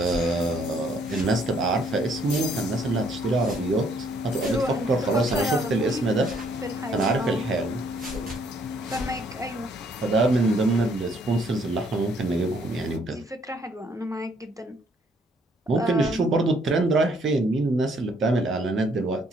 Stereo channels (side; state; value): both; normal; correlation 0.66